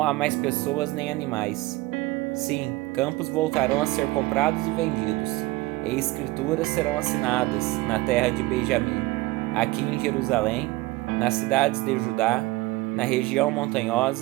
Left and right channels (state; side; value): quieter; left; 20.1 dB